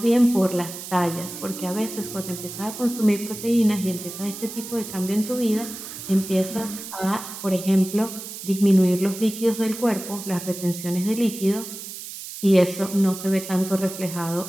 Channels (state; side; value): noise; right; hiss, 11 dB below the sound